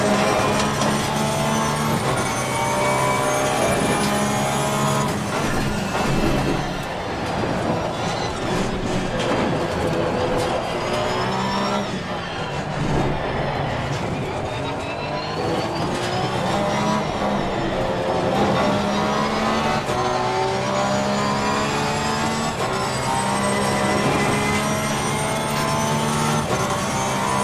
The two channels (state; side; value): identical; both; correlation 1.00